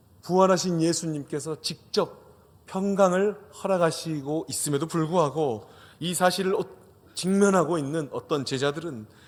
부활하신 예수님께서 직접 평강을 허락하시고 있음에도 불구하고 이 사실을 직면하고 있는 어떤 제자들은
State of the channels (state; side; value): identical; both; correlation 1.00